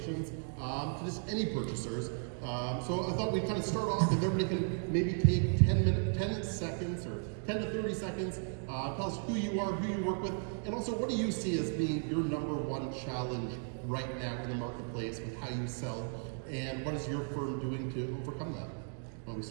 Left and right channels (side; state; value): left; silent; 54 dB below the other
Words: to just any purchasers. So I thought we'd kind of start off, if everybody can maybe take 10 seconds or 10 to 30 seconds, tell us who you are, who you work with, and also what do you see as being your number one challenge right now in the marketplace with how you sell, and what is your firm doing to overcome that? Well, we